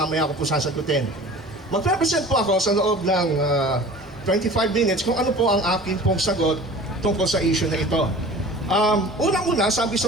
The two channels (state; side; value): normal; both; correlation 0.42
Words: ko po sasagutin. Mag-represent po ako sa loob ng 25 minutes kung ano po ang akin pong sagot tungkol sa issue na ito. Unang-una, sabi